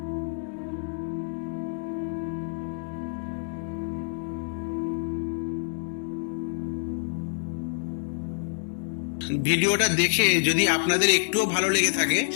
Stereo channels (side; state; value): right; silent; digital silence